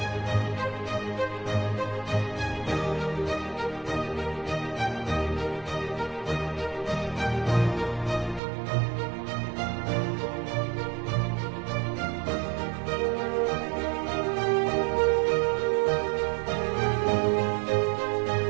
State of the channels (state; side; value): drops out; left; at 8.4 s